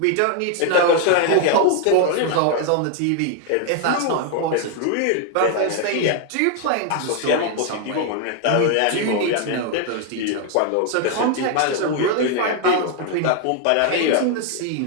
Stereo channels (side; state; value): both; different; correlation 0.00